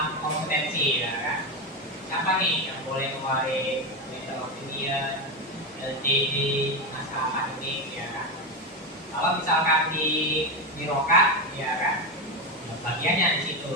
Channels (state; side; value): normal; both; correlation 0.13